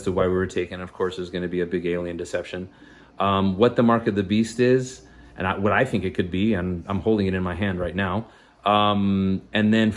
to why we were taken. Of course, there's gonna be a big alien deception. What the mark of the beast is, and what I think it could be, and I'm holding it in my hand right now. And then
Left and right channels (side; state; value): both; identical; correlation 1.00